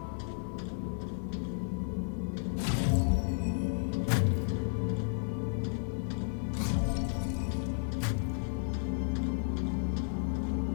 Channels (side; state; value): right; silent; digital silence